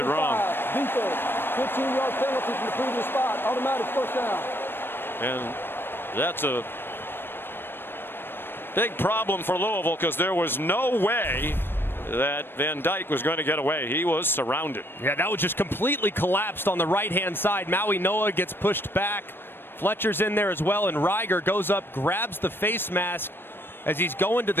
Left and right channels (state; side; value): late; right; 0.10 ms